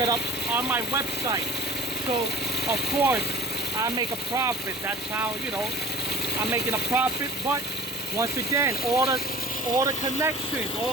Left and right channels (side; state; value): both; normal; correlation 0.42